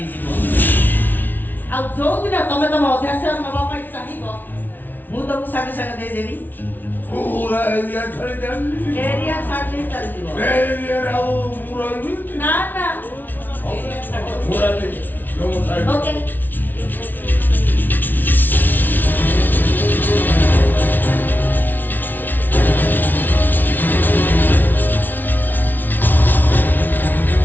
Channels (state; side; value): late; right; 0.087 ms